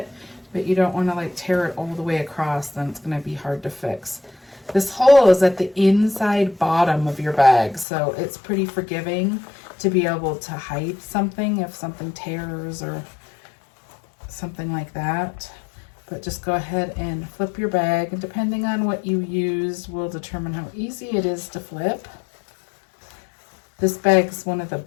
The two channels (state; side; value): drops out; right; at 7.9 s